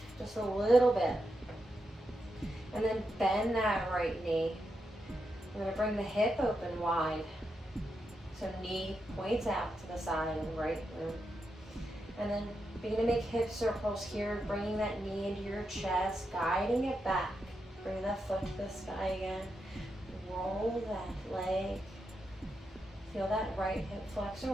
just a little bit. And then bend that right knee. We're going to bring the hip open wide. So knee points out to the side and right glute. And then begin to make hip circles here, bringing that knee into your chest, guiding it back. Bring that foot to the sky again. Roll that leg. Feel that right hip flexor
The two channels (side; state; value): both; normal; correlation 0.85